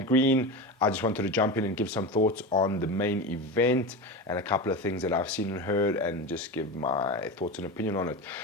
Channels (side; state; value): both; normal; correlation 0.23